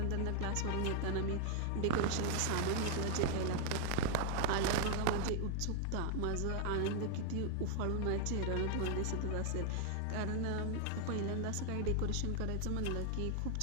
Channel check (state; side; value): different; both; correlation 0.00